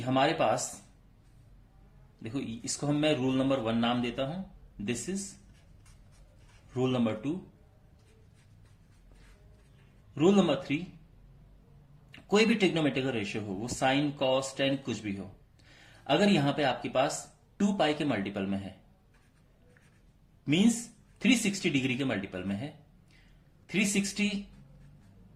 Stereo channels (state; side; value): identical; both; correlation 1.00